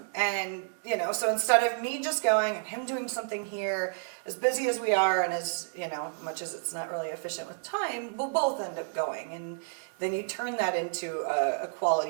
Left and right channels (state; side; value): silent; left; digital silence